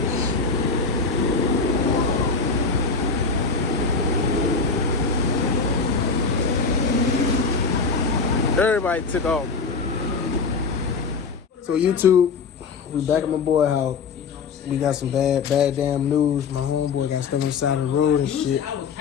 everybody took off. So YouTube, we back at my boy house. We got some bad damn news. My homeboy got stuck on the side of the road and shit.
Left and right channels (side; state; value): right; quieter; 4.9 dB